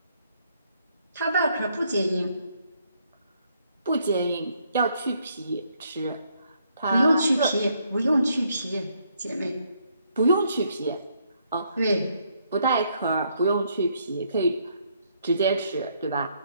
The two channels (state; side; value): inverted; both; correlation -0.72